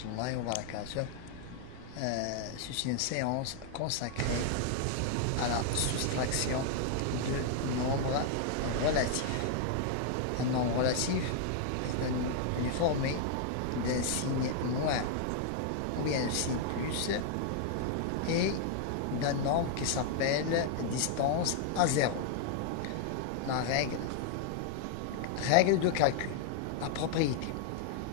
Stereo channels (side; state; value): both; different; correlation 0.00